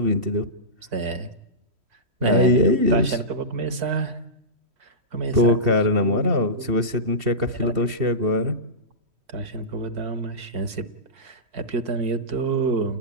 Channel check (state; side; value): late; left; 2.7 ms